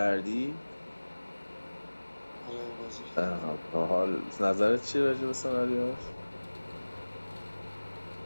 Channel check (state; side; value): inverted; both; correlation -1.00